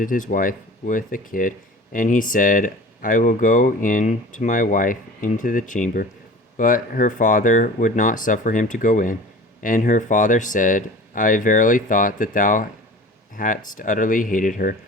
his wife with a kid, and he said, I will go in to my wife into the chamber. But her father would not suffer him to go in. And her father said, I verily thought that thou hadst utterly hated her.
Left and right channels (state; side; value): normal; both; correlation 0.40